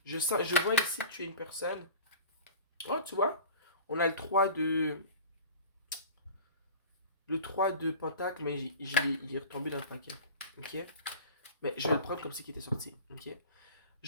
Je vois ici que tu es une personne. Oh, tu vois, on a le 3 de pentacle, mais il est retombé dans le paquet. Ok? Mais je vais le prendre comme si il était sorti. Ok? Je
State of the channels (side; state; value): both; inverted; correlation -0.37